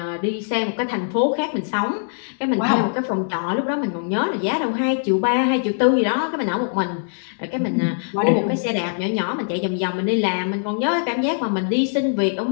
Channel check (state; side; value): silent; right; digital silence